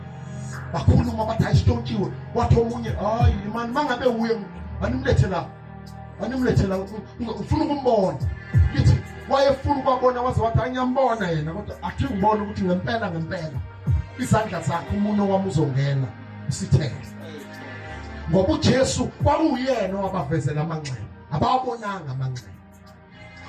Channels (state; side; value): identical; both; correlation 1.00